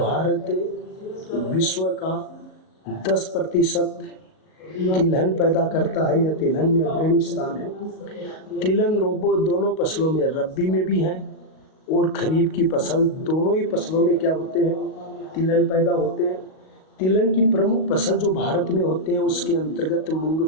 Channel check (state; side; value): late; right; 38 ms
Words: 10% तिलहन पैदा करता है या तिलहन में अग्रणी स्थान है। तिलहन रोबो दोनों फसलों में, रबी में भी हैं और खरीफ की फसल, दोनों ही फसलों में क्या होते हैं, तिलहन पैदा होते हैं। तिलहन की प्रमुख फसल जो भारत में होते हैं उसके अंतर्गत